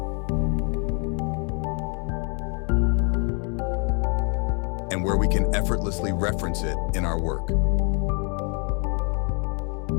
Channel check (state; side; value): quieter; right; 36.9 dB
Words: And where we can effortlessly reference it in our work.